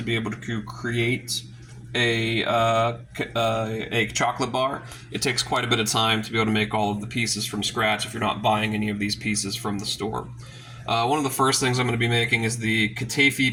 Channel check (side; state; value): both; identical; correlation 1.00